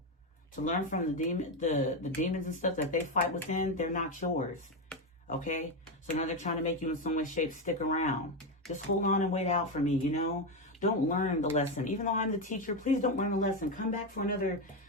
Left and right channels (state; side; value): normal; both; correlation 0.10